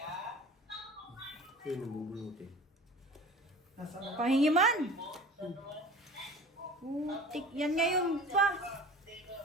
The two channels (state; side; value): normal; both; correlation 0.41